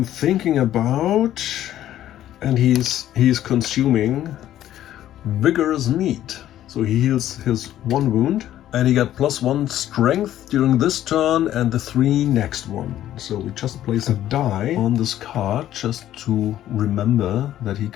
thinking about... And he's consuming vigorous meat. So he heals his 1 wound. And he got +1 strength during this turn and the 3 next one. So we just place a die on this card just to remember that he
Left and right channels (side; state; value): right; quieter; 12.4 dB